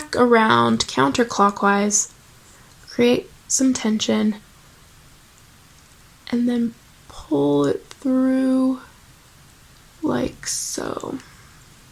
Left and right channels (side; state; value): both; identical; correlation 1.00